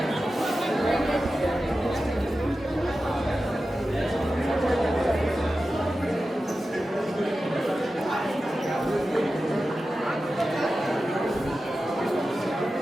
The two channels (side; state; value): both; normal; correlation 0.93